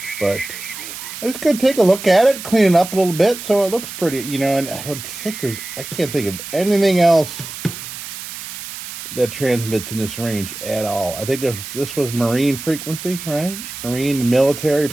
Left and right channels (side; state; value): right; noise; hiss, 10 dB below the sound